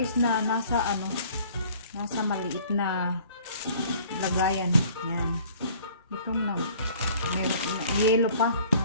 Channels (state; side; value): inverted; both; correlation -0.52